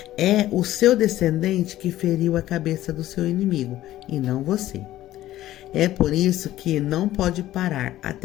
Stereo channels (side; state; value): right; quieter; 14.4 dB